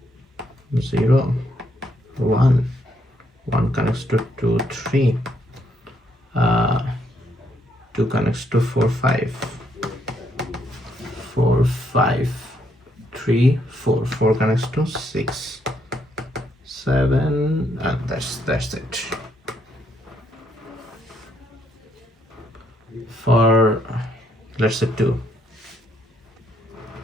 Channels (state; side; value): normal; both; correlation 0.73